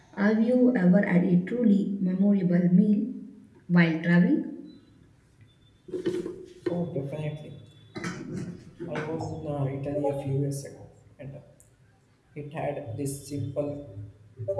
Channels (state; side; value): identical; both; correlation 1.00